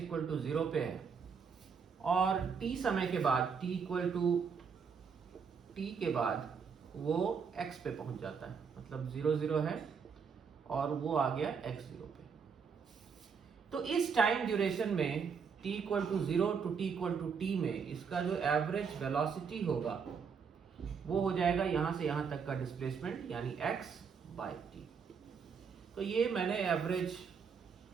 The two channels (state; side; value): quieter; left; 6.1 dB